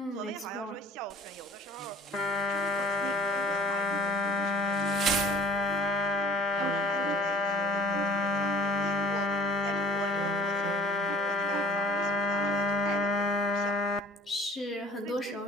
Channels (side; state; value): both; normal; correlation 0.50